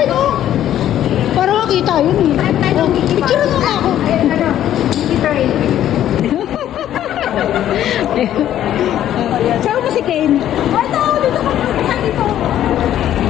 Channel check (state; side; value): quieter; right; 11.6 dB